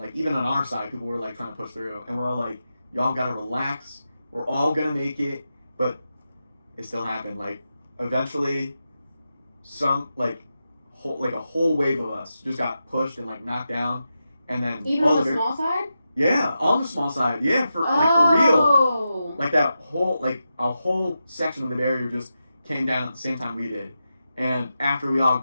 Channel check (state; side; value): inverted; both; correlation -0.89